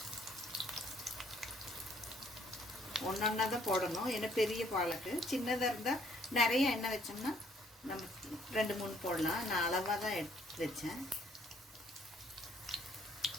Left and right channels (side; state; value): both; normal; correlation 0.63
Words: ஒன்றா தான் போடணும். ஏன்னா பெரிய பாலக்கு. சின்னதாக இருந்தால் நிறைய எண்ணெய் வச்சோம்னா நம்ம 2-3 போடலாம். நான் அளவாக தான் எடுத்து வச்சேன்.